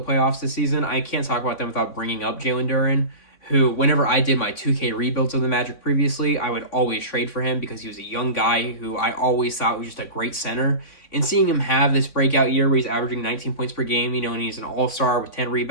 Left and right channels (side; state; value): right; late; 3.6 ms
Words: playoffs this season, I can't talk about them without bringing up Jalen Duren, who, whenever I did my 2K rebuilds of the Magic previously, I would always trade for him because he was a young guy who I always thought was just a great center. And seeing him have this breakout year where he's averaging 19 points per game, and he's an all-star with 10